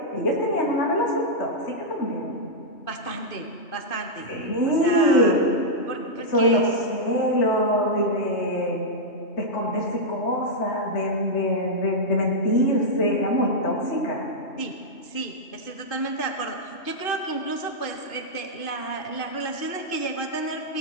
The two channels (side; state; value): right; late; 2.5 ms